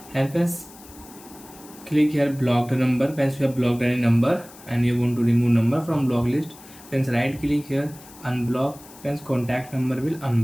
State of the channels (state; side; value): noise; left; hiss, 21 dB below the sound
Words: And friends click here blocked number. Friends, you have blocked any number and you want to remove number from block list. Friends, right click here unblock. Friends, contact number will